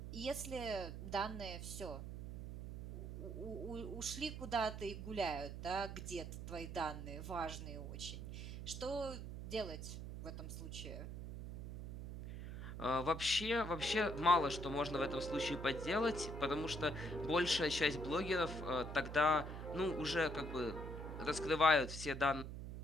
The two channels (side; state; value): right; noise; hum, 8 dB below the sound